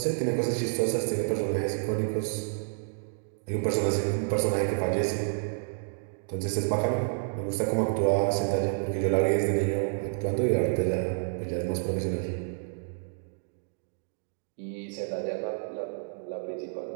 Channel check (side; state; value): left; silent; digital silence